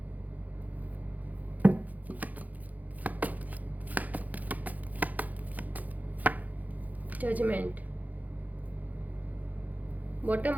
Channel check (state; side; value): late; left; 0.080 ms